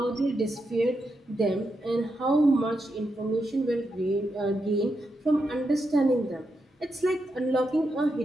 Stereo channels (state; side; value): normal; both; correlation 0.84